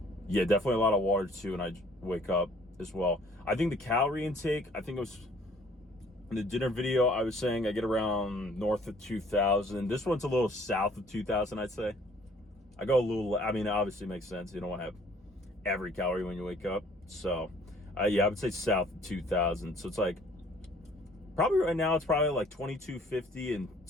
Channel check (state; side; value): normal; both; correlation 0.57